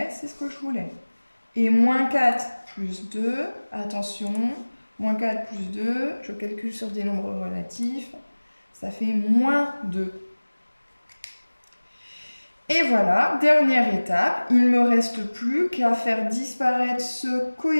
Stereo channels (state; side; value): inverted; both; correlation -1.00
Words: c'est ce que je voulais. Et moins 4 plus 2, attention, moins 4 plus 2, je calcule sur des nombres relatifs. Ça fait moins 2. Et voilà, dernière étape, il ne me reste plus qu'à faire disparaître ce